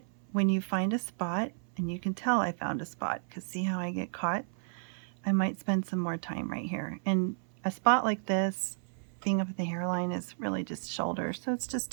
when you find a spot, and you can tell I found a spot because see how I get caught? I might spend some more time right here. And a spot like this, being up at the hairline, is really just shoulder, so it's just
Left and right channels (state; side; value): silent; left; 56 dB below the other